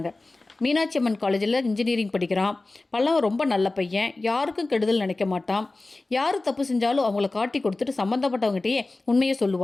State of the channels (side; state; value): right; quieter; 3.1 dB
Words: மீனாட்சி அம்மன் காலேஜில் இன்ஜினியரிங் படிக்கிறான். பல்லவன் ரொம்ப நல்ல பையன், யாருக்கும் கெடுதல் நினைக்க மாட்டான். யார் தப்பு செஞ்சாலும் அவங்கள காட்டி கொடுத்துட்டு சம்மந்தப்பட்டவங்ககிட்டயே உண்மையை